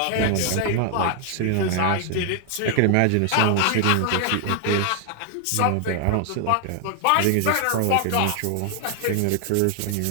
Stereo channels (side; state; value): both; different; correlation 0.00